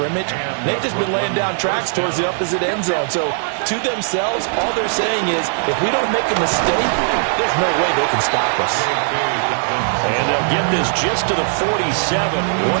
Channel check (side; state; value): left; silent; digital silence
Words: They've just been laying down tracks towards the opposite end zone. So, to themselves, all they're saying is, if we don't make a mistake, there's no way they can stop us. And they'll get this just to the 47,